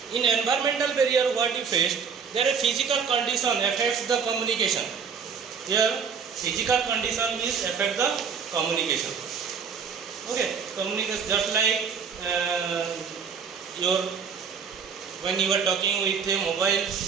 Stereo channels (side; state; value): left; quieter; 6.3 dB